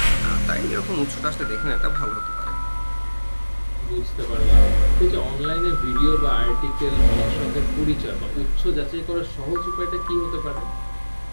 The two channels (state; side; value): inverted; both; correlation -1.00